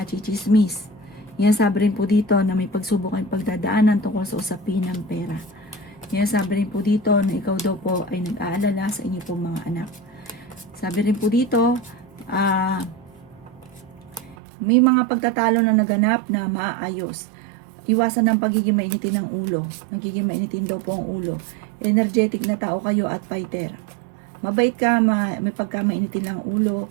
Yan sabi rin po dito na may pagsubok ang pagdadaanan tungkol sa usapin ng pera. Yan sabi rin po dito na ikaw daw po ay nag-aalala sa inyo pong mga anak. Sabi rin po dito, may mga pagtatalo na naganap na maaayos. Iwasan ng pagiging mainitin ng ulo. Nagiging mainitin daw po ang ulo. Energetic na tao kayo at fighter. Mabait ka, may pagka-mainitin lang ulo.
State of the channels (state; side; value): drops out; left; at 14.4 s